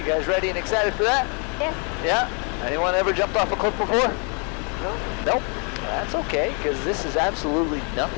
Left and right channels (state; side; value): quieter; right; 36.7 dB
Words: guys ready and excited for that? Yes. Yeah? Anyone ever jumped off a cliff before? No. Nope. That's okay, because this is absolutely